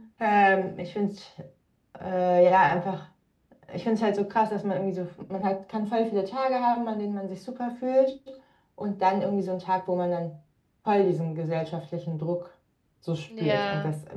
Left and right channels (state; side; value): identical; both; correlation 1.00